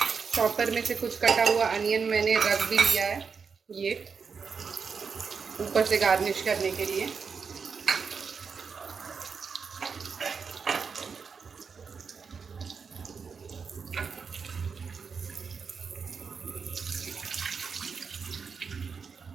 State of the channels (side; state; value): left; quieter; 5.7 dB